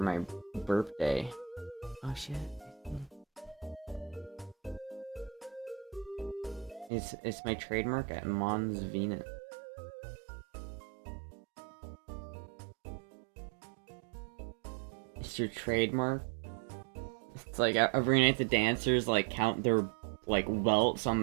my birthday. Oh shit. It's my trademark at Mons Venus. It's your trademark? It's like every night the dancers like count their like welts on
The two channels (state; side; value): drops out; left; at 6.9 s